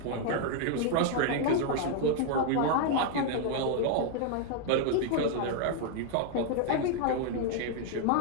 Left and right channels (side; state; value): both; different; correlation 0.00